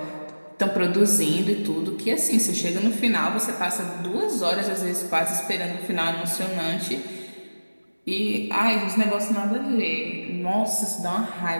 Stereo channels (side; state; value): both; inverted; correlation -1.00